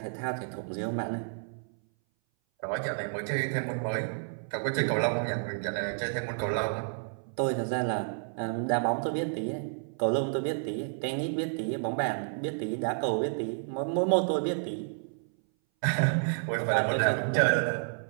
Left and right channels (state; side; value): silent; left; 57 dB below the other